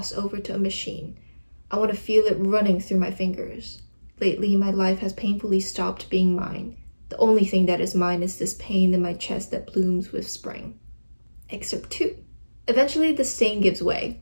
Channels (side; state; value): both; inverted; correlation -1.00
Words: over to a machine. I want to feel it running through my fingers. Lately, my life has painfully stopped being mine. The only thing that is mine is this pain in my chest that blooms with spring. Excerpt 2. Eventually, the stain gives way.